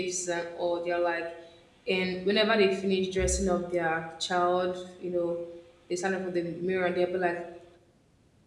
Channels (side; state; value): both; identical; correlation 1.00